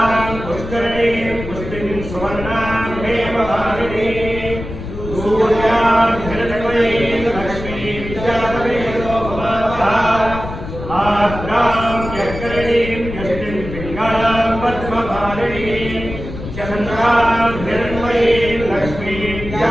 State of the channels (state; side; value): noise; left; rumble, 9 dB below the sound